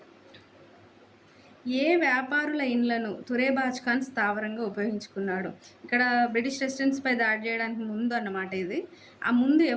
ఏ వ్యాపారుల ఇండ్లను తురేబాజ్ ఖాన్ స్థావరంగా ఉపయోగించుకున్నాడు? ఇక్కడ బ్రిటిష్ రెసిడెన్స్‌పై దాడి చేయడానికి ముందు అన్నమాట ఇది. ఆ ముందు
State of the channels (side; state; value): both; identical; correlation 1.00